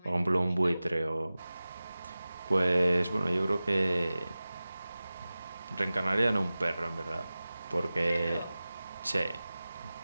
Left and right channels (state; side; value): inverted; both; correlation -0.96